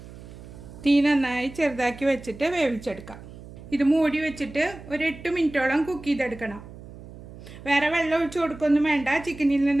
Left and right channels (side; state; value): right; noise; hum, 16 dB below the sound